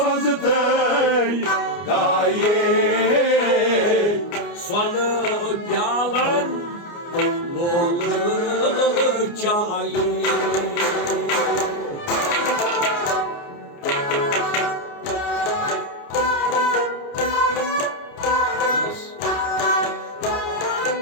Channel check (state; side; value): late; right; 29 ms